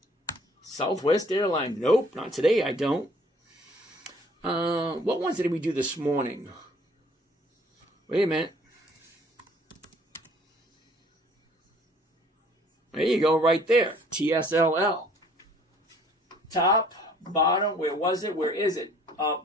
Southwest Airlines. Nope, not today, I don't. What ones did we do this morning? Wait a minute. There you go, right there. TSLL. Top, bottom, where was it? Where is it? Up,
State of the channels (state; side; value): normal; both; correlation 0.57